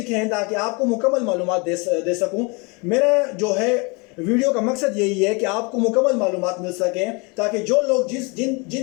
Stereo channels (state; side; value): quieter; right; 29.8 dB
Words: हैं ताकि आपको मुकम्मल मालूमात दे सकूं। मेरा जो है वीडियो का मकसद यही है कि आपको मुकम्मल मालूमात मिल सकें, ताकि जो लोग